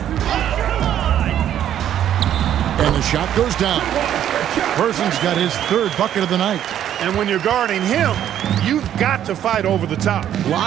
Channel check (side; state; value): left; quieter; 10.6 dB